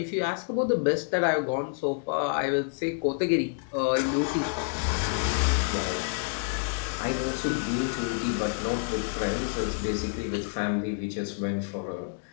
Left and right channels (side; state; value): right; silent; 59 dB below the other